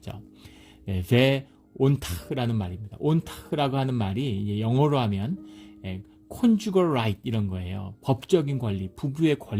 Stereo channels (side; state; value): both; identical; correlation 1.00